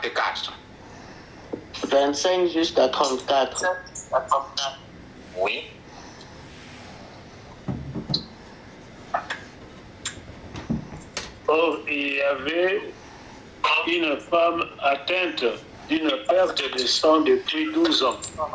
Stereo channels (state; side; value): identical; both; correlation 1.00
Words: 25 jusqu'à 34. Oui. Or, il y avait une femme atteinte d'une perte de sang depuis 12 ans.